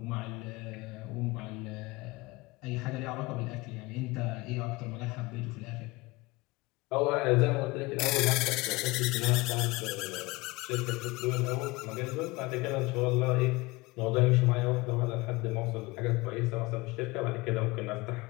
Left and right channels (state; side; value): quieter; right; 22.6 dB